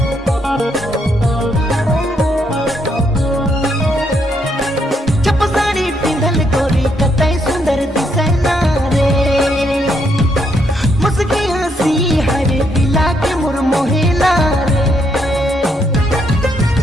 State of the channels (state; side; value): normal; both; correlation 0.75